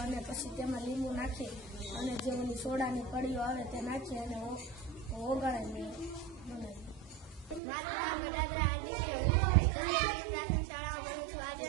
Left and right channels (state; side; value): drops out; left; at 7.6 s